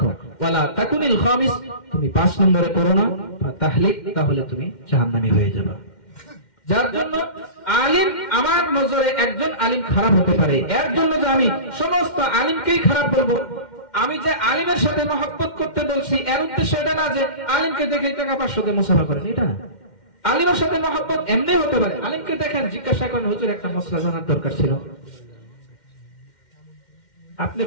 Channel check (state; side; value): late; right; 2.1 ms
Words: ওয়ালা তাকুনিল খামিস, তুমি 5 নম্বরে পড়ো না, ফাতাহলিক, তাহলে তুমি জাহান্নামী হয়ে যাবে। যার জন্য আলিম, আমার নজরে একজন আলিম খারাপ হতে পারে, এর জন্য যে আমি সমস্ত আলিমকেই খারাপ বলবো। আমি যে আলিমের সাথে মহব্বত করতে বলছি এর উদ্দেশ্য এটা না যে আলিমকে দেখে টাকা 500 দিয়ে মুসাফা করেন, এটা না। আলিমের সাথে মহব্বত এমনি হতে পারে, আলিমকে দেখেন, জিজ্ঞাসা করেন হুজুর একটা মশলা জানার দরকার ছিল। আপনি